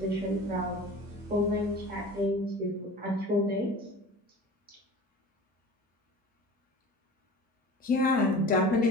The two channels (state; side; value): normal; both; correlation 0.39